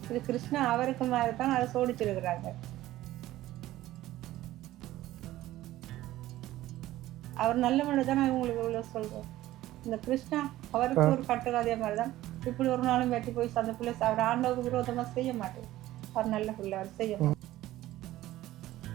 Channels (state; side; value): quieter; left; 15.3 dB